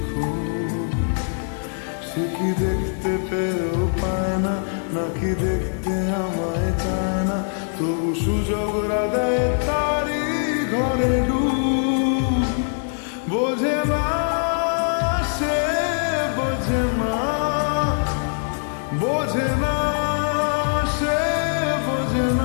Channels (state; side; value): silent; right; digital silence